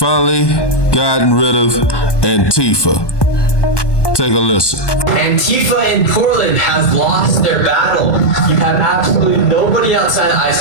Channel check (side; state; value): right; late; 1.2 ms